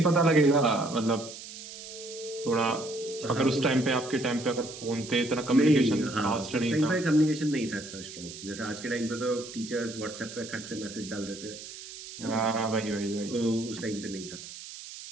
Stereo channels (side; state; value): right; noise; hiss, 13 dB below the sound